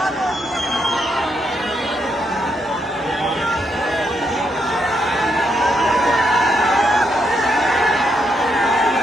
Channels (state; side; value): normal; both; correlation 0.78